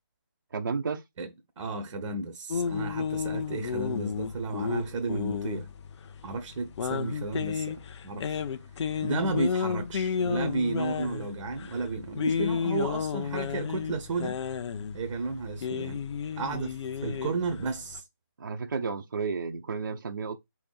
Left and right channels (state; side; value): inverted; both; correlation -0.62